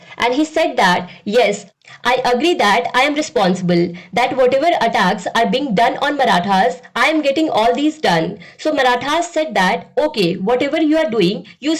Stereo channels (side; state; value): both; identical; correlation 1.00